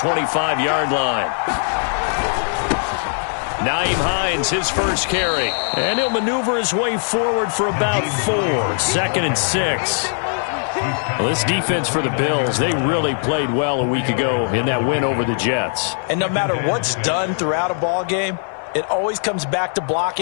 line. Naeem Hines, his first carry. And he'll maneuver his way forward for about 4. 2nd and 6. Well, this defense for the Bills, they really played well a week ago in that win over the Jets. And no matter what's done throughout a ball game, it always comes back to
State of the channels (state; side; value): silent; right; 66 dB below the other